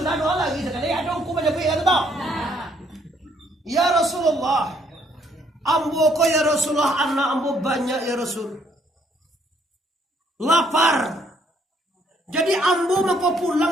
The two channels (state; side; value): normal; both; correlation 0.67